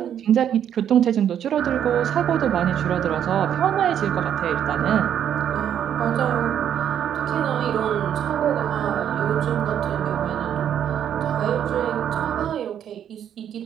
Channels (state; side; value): quieter; left; 9.5 dB